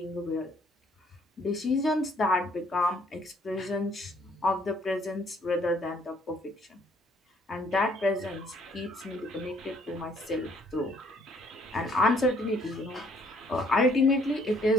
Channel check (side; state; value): both; normal; correlation 0.64